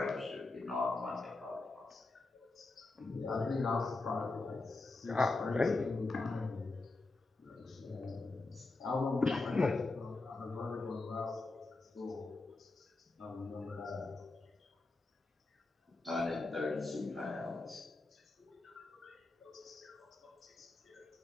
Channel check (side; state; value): right; quieter; 3.4 dB